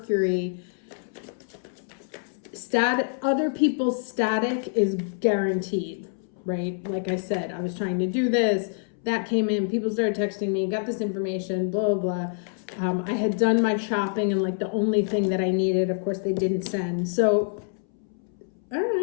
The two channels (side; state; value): right; silent; 61 dB below the other